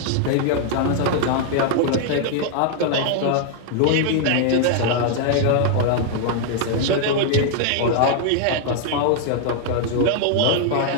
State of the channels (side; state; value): both; different; correlation 0.00